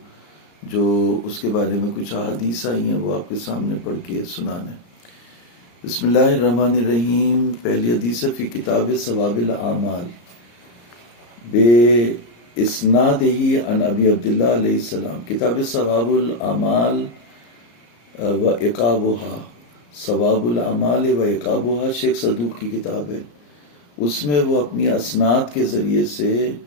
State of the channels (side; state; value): right; late; 34 ms